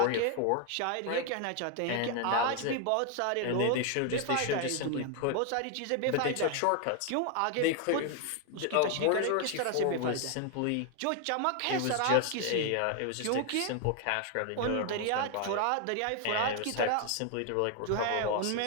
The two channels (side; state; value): both; different; correlation 0.00